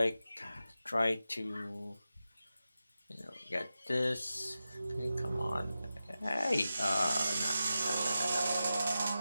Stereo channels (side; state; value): both; inverted; correlation -0.92